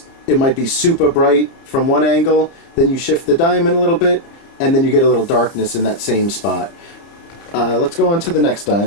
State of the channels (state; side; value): late; right; 29 ms